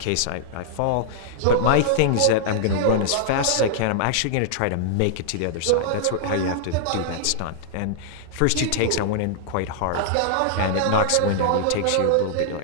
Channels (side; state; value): both; different; correlation -0.01